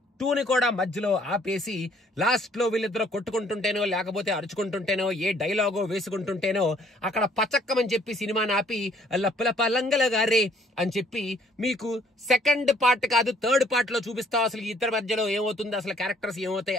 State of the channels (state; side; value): normal; both; correlation 0.62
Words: 2ని కూడా మధ్యలో ఆపేసి లాస్ట్ లో వీళ్ళిద్దరూ కొట్టుకుంటుంటేనో లేకపోతే అరుచుకుంటుంటేనో ఏ డైలాగో వేసుకుంటుంటేనో అక్కడ పచక్కమని చెప్పి సినిమాని ఆపి లప్పలప లంగలగారే అని చెప్పి మీకు సెకండ్ పార్ట్ కాదు థర్డ్ పార్ట్ లో చూపిస్తావు అసలు ఇద్దరి మధ్యలో ఏమవుతుంది, అసలు క్యారెక్టర్స్ ఏమవుతాయి